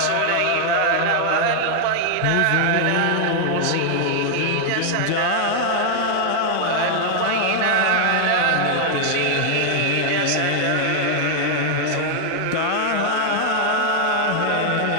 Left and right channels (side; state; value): both; different; correlation 0.00